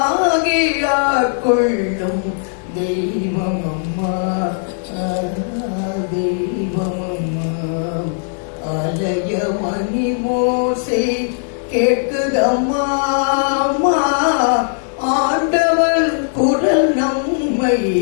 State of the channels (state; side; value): silent; right; digital silence